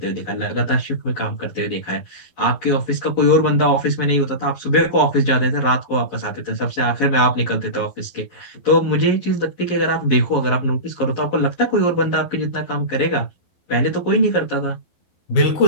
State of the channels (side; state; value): right; late; 11 ms